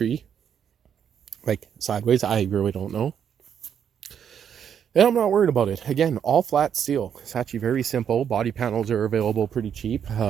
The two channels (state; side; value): quieter; left; 8.3 dB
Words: like sideways. I really don't know. And I'm not worried about it. Again, all flat steel. It's actually very simple. Body panels are available pretty cheap.